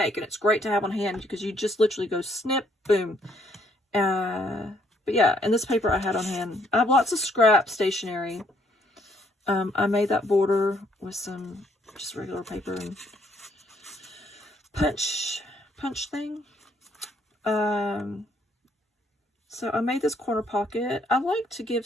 and it's great to have on hand because you just literally go snip, boom. But yeah, and this paper I had on hand. I have lots of scrap stationery. I made that border with some just regular paper and punch thing. So I made this corner pocket. I like to give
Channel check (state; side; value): normal; both; correlation 0.68